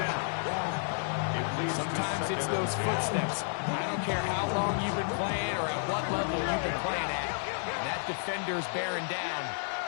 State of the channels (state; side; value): silent; right; digital silence